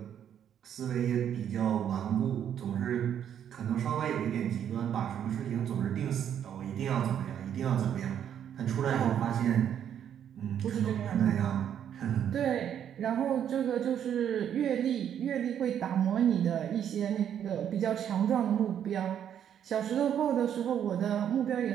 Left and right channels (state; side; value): quieter; left; 9.4 dB